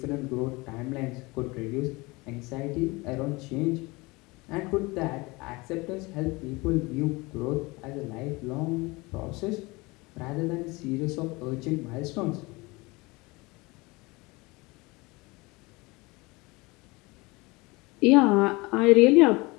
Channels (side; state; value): right; quieter; 24.0 dB